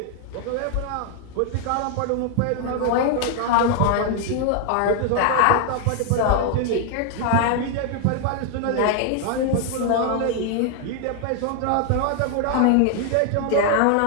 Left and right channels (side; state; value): both; different; correlation 0.00